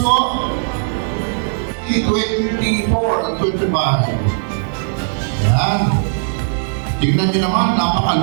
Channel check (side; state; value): left; silent; 59 dB below the other